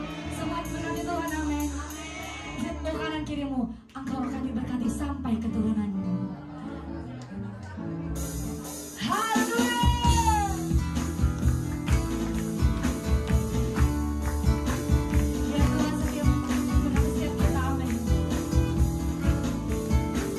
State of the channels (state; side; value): identical; both; correlation 1.00